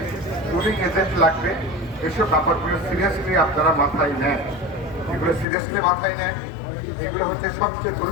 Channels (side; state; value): right; drops out; at 5.5 s